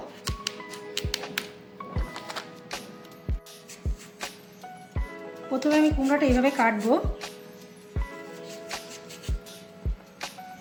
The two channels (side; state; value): both; identical; correlation 1.00